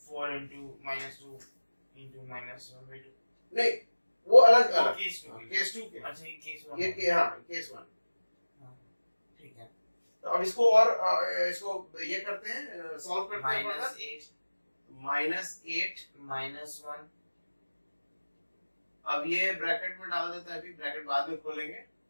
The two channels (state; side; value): inverted; both; correlation -1.00